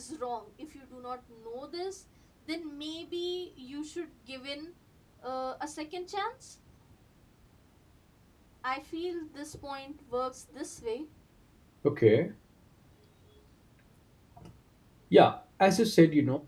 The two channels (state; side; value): identical; both; correlation 1.00